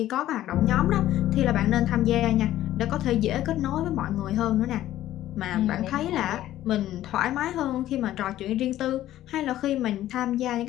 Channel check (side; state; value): right; quieter; 13.6 dB